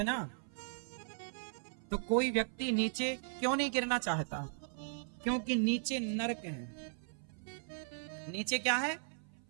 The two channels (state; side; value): silent; left; 53 dB below the other